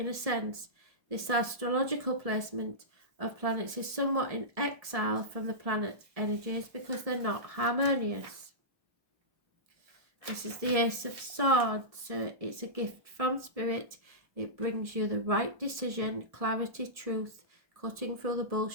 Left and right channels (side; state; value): left; late; 1.7 ms